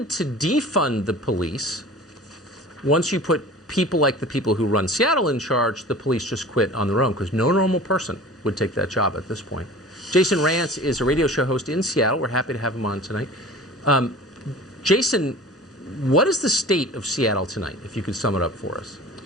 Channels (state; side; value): normal; both; correlation 0.40